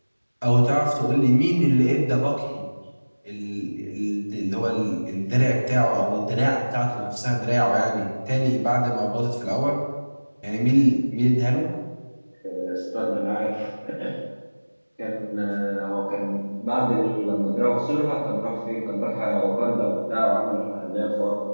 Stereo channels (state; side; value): inverted; both; correlation -1.00